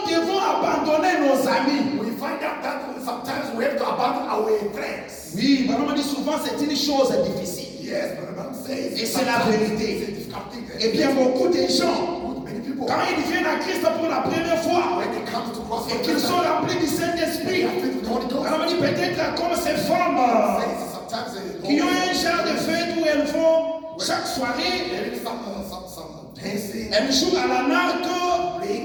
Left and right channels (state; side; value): identical; both; correlation 1.00